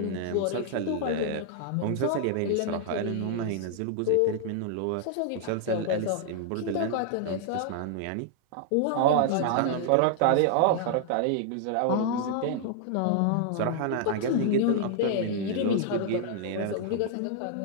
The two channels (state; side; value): different; both; correlation 0.00